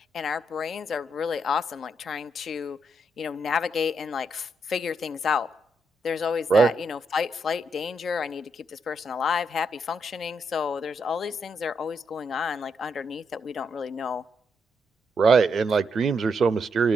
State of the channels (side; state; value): both; normal; correlation 0.79